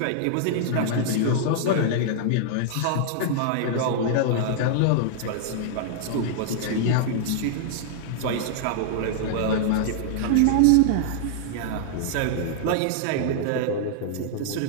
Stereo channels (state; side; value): different; both; correlation -0.01